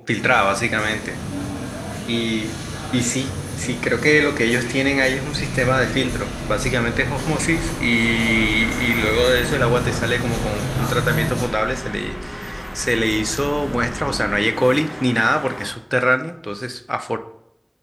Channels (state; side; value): identical; both; correlation 1.00